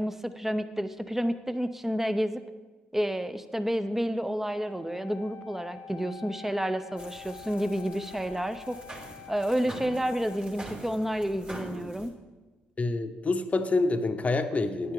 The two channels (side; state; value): both; normal; correlation 0.93